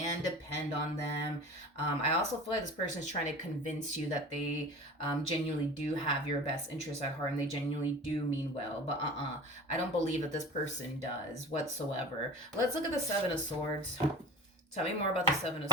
depend on them. I also feel like this person is trying to convince you that they genuinely do have your best interests at heart and they genuinely do mean well. But I don't believe that this person does whatsoever. Let's look at the Seven of Swords. Tell me more about the Seven of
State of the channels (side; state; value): both; normal; correlation 0.38